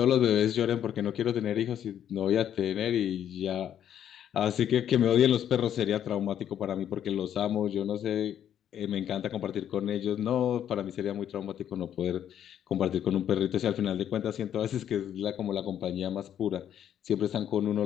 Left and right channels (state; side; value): quieter; right; 10.0 dB